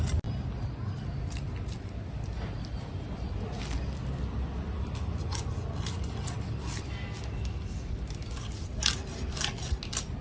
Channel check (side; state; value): both; identical; correlation 1.00